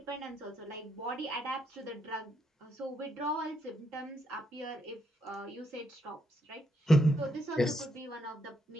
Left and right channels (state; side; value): normal; both; correlation 0.77